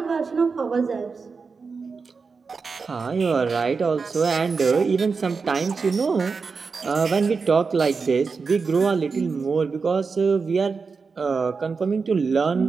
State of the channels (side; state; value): left; quieter; 4.9 dB